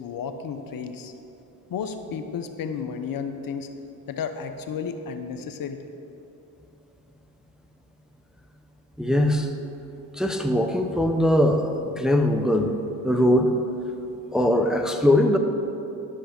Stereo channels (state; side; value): normal; both; correlation 0.67